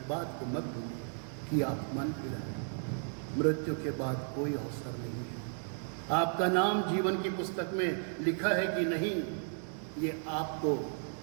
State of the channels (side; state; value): left; silent; 55 dB below the other